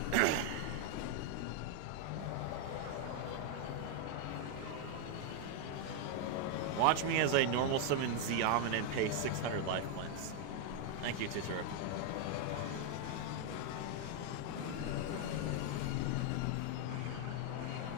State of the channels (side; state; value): both; different; correlation 0.00